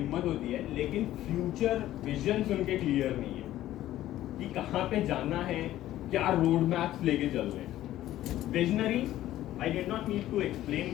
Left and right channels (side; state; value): right; quieter; 13.9 dB